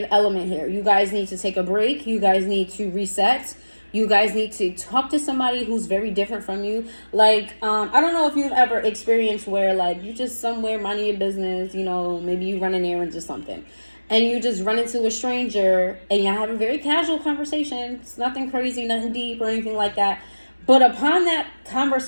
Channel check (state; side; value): inverted; both; correlation -1.00